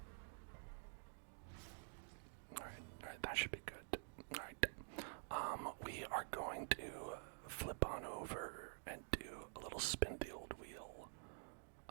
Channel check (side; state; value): left; silent; digital silence